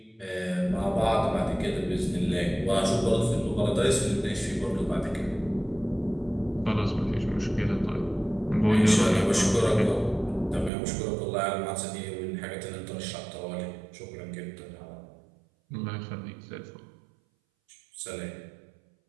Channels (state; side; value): drops out; left; at 10.7 s